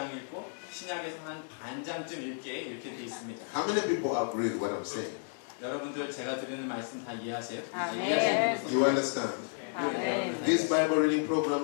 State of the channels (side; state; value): right; silent; 56 dB below the other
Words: 읽고 신약에서 한 반장쯤 읽게 이렇게 돼 있습니다. How many people agree with what I'm saying? 여러분들 제가 드리는 말씀 다 이해하세요? 아멘. 이해하시는 분들 You understand? 아멘. These Bible reading